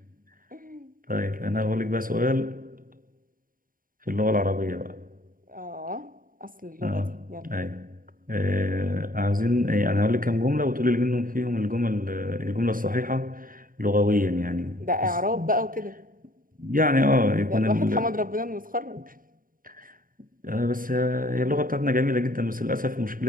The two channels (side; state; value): left; late; 0.41 ms